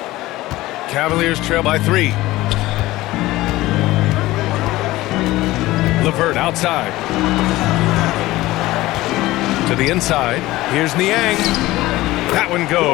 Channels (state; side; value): quieter; right; 17.8 dB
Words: Cavaliers trail by 3. LeVert outside. To the inside. Here's Niang. That one